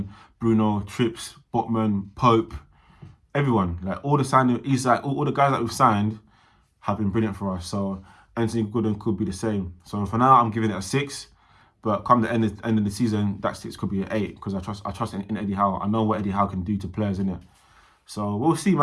Bruno, Trips, Botman, Pope, everyone, like all the signings, Isak, all the guys that we've signed have been brilliant for us. So Anthony Gordon could be the same. So for now, I'm giving it a 6. But come the end of the season, that 6 could be an 8 because I trust in Eddie Howe. I know what Eddie Howe can do to players, innit? So we'll see,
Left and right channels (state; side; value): identical; both; correlation 1.00